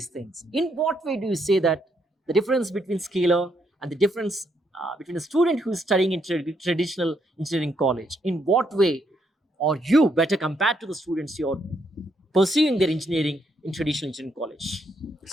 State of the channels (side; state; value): both; normal; correlation 0.75